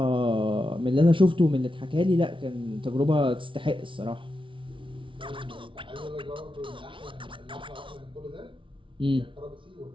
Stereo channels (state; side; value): late; left; 0.25 ms